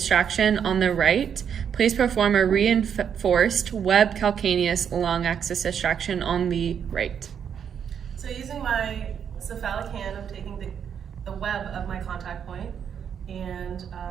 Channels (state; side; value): quieter; left; 7.9 dB